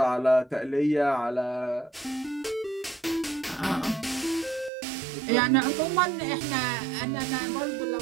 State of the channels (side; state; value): left; drops out; at 4.7 s